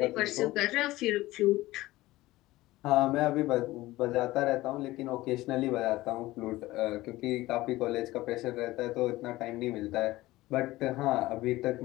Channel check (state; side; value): quieter; right; 18.0 dB